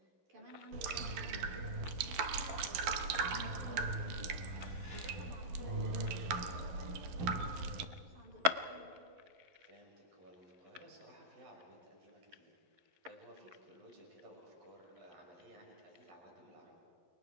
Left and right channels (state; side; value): late; left; 12 ms